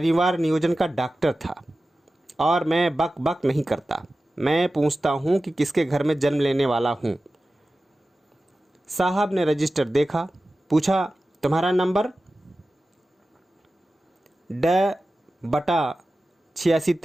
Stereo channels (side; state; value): both; normal; correlation 0.95